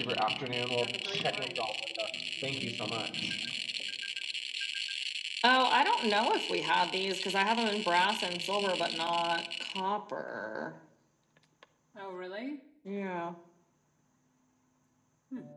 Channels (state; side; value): identical; both; correlation 1.00